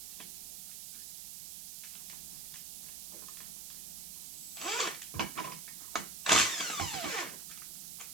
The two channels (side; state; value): right; noise; hiss, 7 dB below the sound